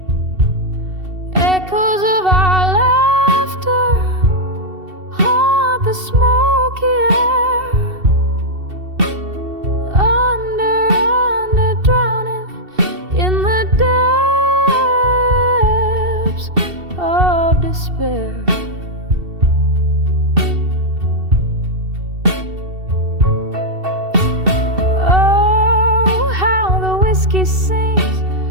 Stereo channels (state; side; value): late; left; 2.7 ms